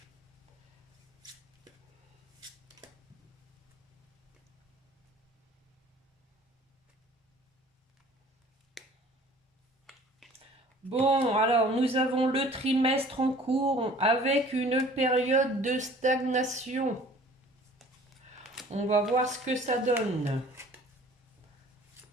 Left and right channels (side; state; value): both; normal; correlation 0.49